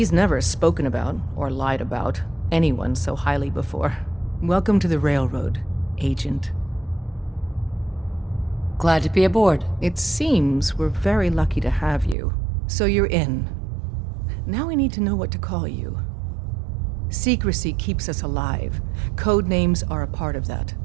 never spoken about, or lied about, anyone so highly before. Welcome to the Railroad, Agent. Glad to be aboard. It seems we're very lucky to have you. So you're in. Now we need to know what to call you. Secrecy keeps us alive. Code names are a part of that.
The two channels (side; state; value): left; drops out; at 12.2 s